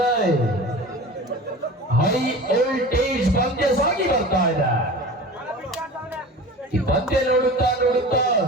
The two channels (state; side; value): normal; both; correlation 0.36